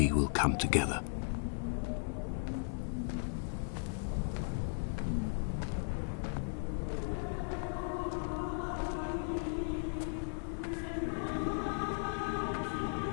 will come together.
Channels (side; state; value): right; silent; digital silence